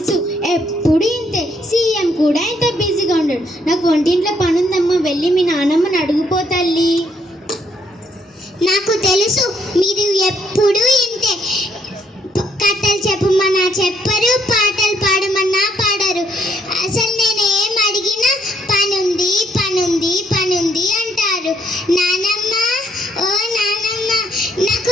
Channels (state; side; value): normal; both; correlation 0.70